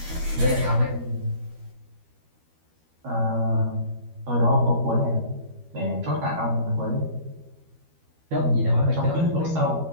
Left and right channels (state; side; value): late; left; 12 ms